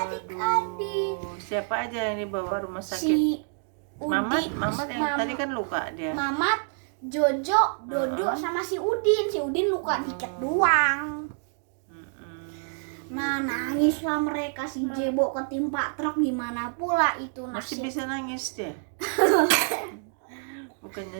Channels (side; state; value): left; silent; 56 dB below the other